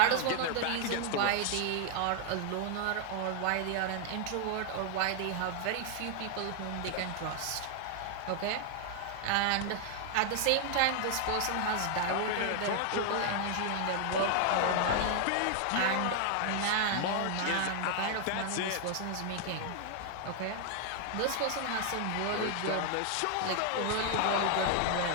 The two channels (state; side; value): different; both; correlation 0.00